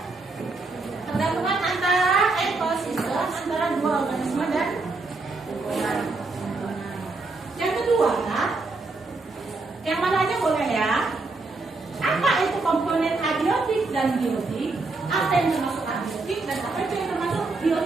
pergabungan antara ekosistem antara dua organisme dan lingkungan. Yang kedua, yang mana aja boleh ya. Apa itu komponen abiotik dan biotik? Apa yang termasuk abiotik dan apa itu yang termasuk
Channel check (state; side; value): quieter; left; 3.6 dB